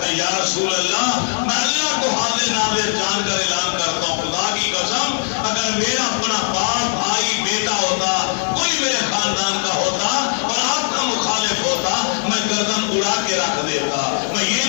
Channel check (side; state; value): right; silent; 58 dB below the other